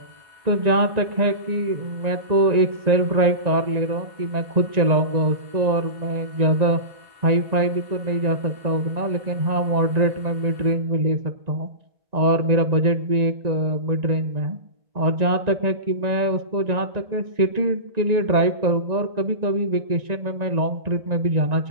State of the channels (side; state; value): left; late; 1.9 ms